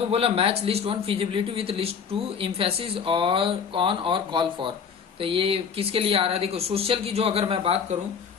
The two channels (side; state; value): right; quieter; 6.6 dB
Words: बोला match list 1 feasibility with list 2 emphasis और ऑन और कॉल फॉर। तो ये किसके लिए आ रहा है, देखो सोशल की जो अगर मैं बात करूं